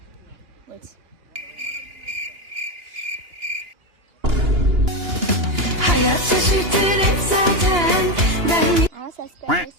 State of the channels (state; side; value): late; left; 2.9 ms